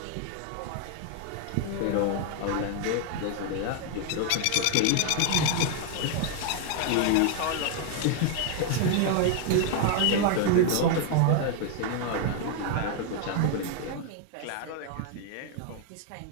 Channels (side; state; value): both; different; correlation 0.00